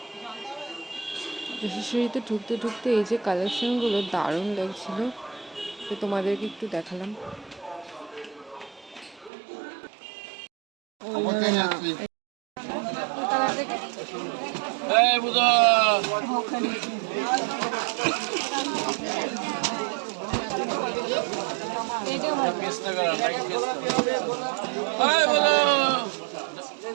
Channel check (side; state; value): left; drops out; at 9.3 s